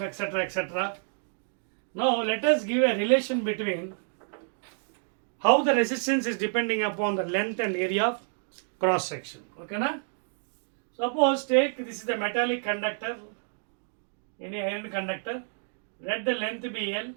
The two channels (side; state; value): left; silent; digital silence